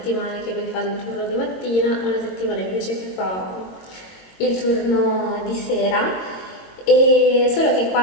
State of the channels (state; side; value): late; right; 22 ms